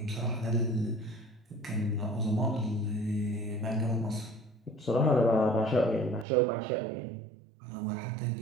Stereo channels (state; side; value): drops out; left; at 6.2 s